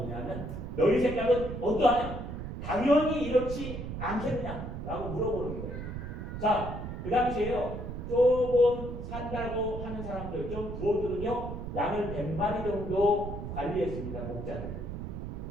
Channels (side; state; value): right; noise; rumble, 7 dB below the sound